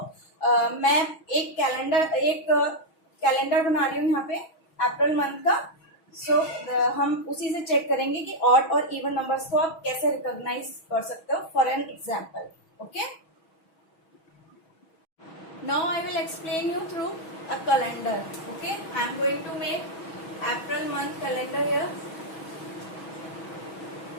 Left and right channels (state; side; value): late; right; 6.2 ms